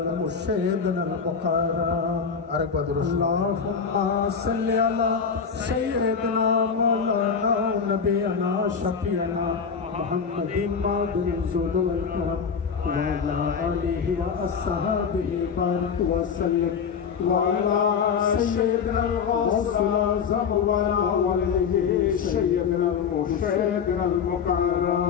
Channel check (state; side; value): quieter; right; 6.4 dB